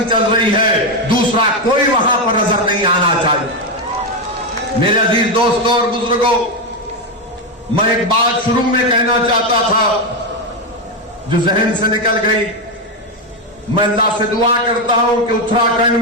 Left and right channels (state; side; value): normal; both; correlation 0.08